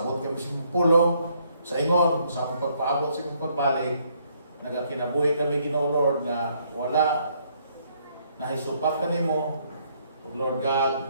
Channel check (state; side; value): inverted; both; correlation -0.69